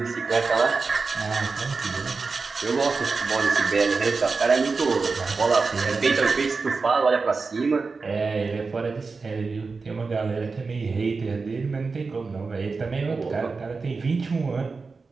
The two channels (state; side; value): quieter; left; 4.4 dB